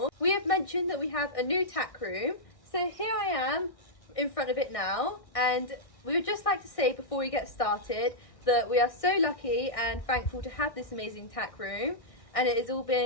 we have mentioned that we have a new tack room. So here I am in front of it now, and we would just like to say before we get started that we are so lucky and thankful to have this amazing tack room, and it has all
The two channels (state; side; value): late; right; 1.6 ms